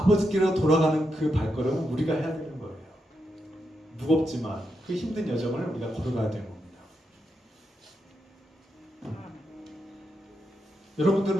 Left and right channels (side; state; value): both; normal; correlation 0.84